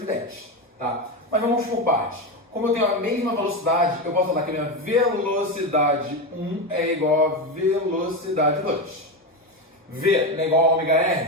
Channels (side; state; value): both; normal; correlation 0.15